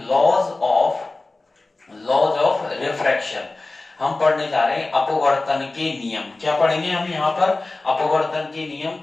लॉज ऑफ रिफ्रैक्शन। हम पढ़ने जा रहे हैं अपवर्तन के नियम। क्या पढ़ेंगे हम यहाँ पर, अपवर्तन के नियम,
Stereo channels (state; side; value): quieter; right; 3.2 dB